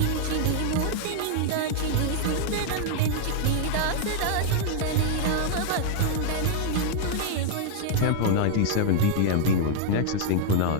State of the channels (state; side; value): different; both; correlation -0.01